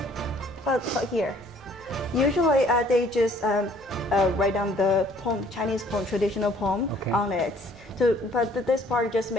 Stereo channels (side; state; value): both; normal; correlation 0.58